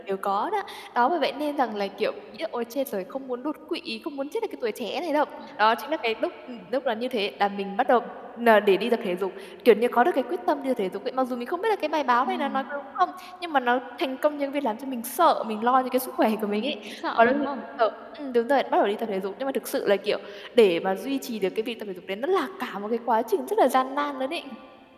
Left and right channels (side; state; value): both; identical; correlation 1.00